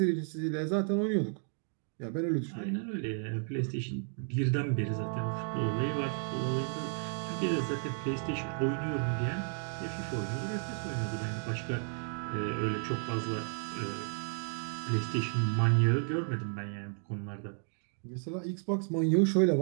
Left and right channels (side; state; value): left; silent; 56 dB below the other